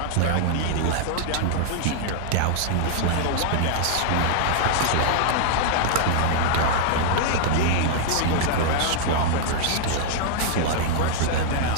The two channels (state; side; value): different; both; correlation -0.01